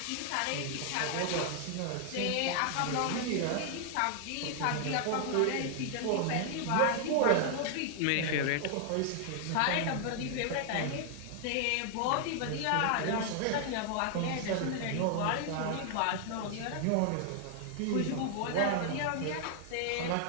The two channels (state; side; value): different; both; correlation 0.00